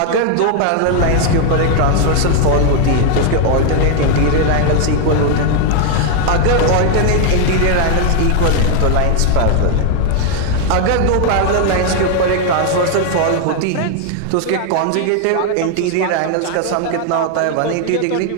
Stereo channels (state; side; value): different; both; correlation 0.00